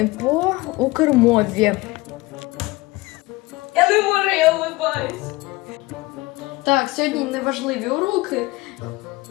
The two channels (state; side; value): quieter; right; 21.3 dB